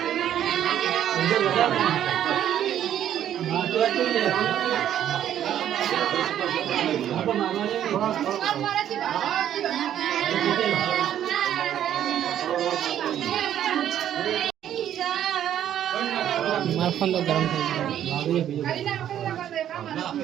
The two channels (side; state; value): left; quieter; 10.7 dB